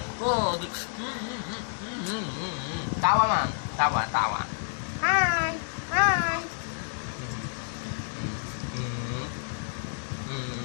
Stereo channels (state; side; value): silent; right; digital silence